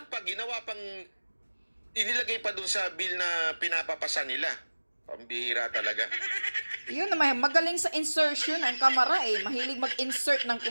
Ginawa pang... Inilagay pa doon sa bill na pinapapasa nila. Pambihira talaga. Yun naman, magaling sa insertion ang Kamara Mahilig mag-insert ng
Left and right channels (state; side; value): inverted; both; correlation -1.00